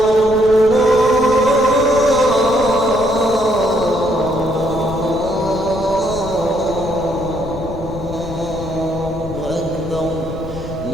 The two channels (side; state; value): left; noise; rumble, 12 dB below the sound